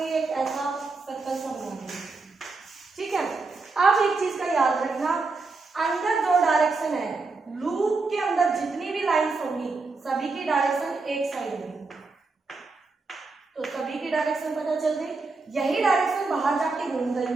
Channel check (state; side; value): quieter; left; 3.9 dB